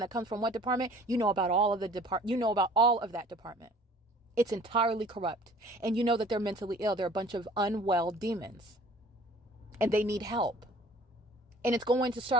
that comes from what department. You know about all of that department. It's entirely corrupt. And you know that they're mentally ill. They're a bunch of unwell demons. And they need help. And it's going to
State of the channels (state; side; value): normal; both; correlation 0.50